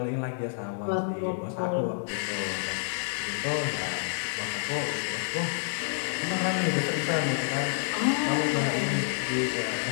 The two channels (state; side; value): silent; right; 59 dB below the other